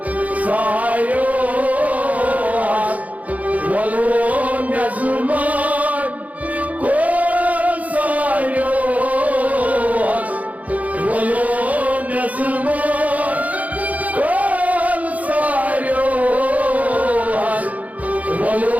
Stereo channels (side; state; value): left; late; 0.072 ms